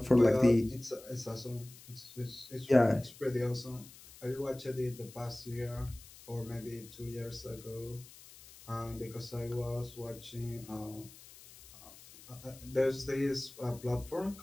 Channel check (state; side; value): noise; left; hiss, 19 dB below the sound